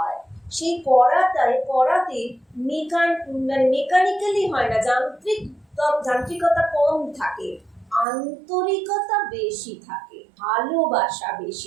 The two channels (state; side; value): drops out; left; at 8.1 s